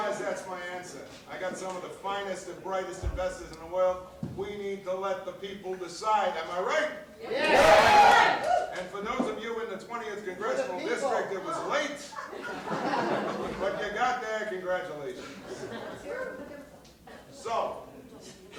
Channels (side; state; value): both; identical; correlation 1.00